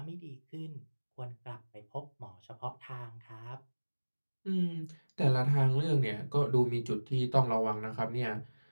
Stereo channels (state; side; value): inverted; both; correlation -1.00